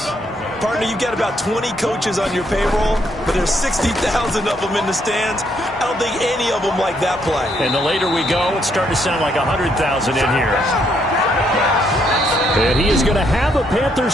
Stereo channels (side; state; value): both; normal; correlation 0.73